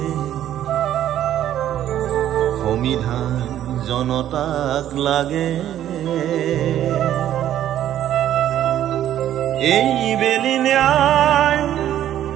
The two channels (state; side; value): quieter; left; 11.7 dB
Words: সংবিধান জনতাক লাগে এই বেলি ন্যায়